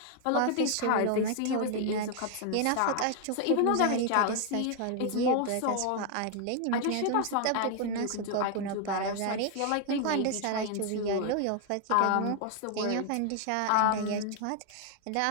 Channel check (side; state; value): both; different; correlation 0.00